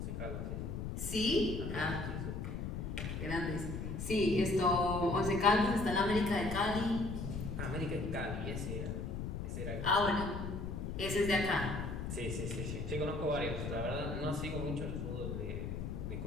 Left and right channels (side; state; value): left; noise; rumble, 4 dB below the sound